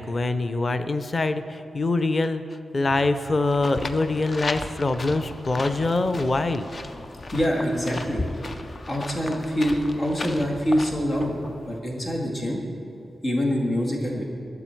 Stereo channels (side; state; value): both; normal; correlation 0.92